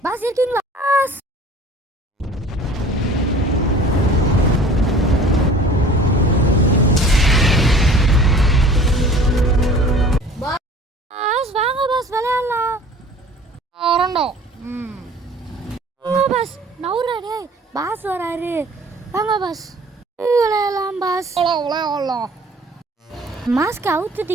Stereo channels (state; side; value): normal; both; correlation 0.47